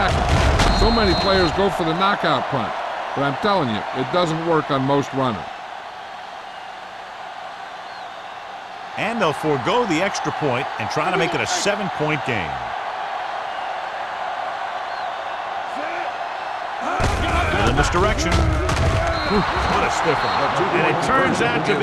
So many players go for the knockout punt, but I'm telling you, it doesn't work on most runners. And they'll forego the extra point and try to make it a 7-point game. In this direction. What a stiff one. And it turns out to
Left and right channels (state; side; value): identical; both; correlation 1.00